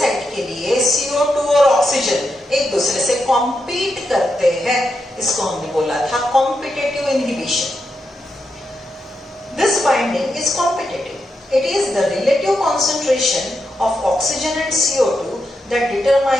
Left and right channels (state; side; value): normal; both; correlation 0.85